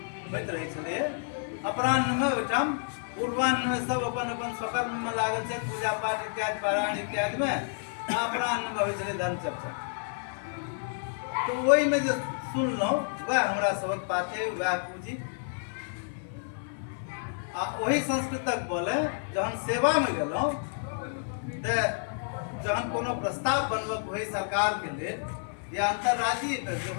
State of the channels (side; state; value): right; silent; 58 dB below the other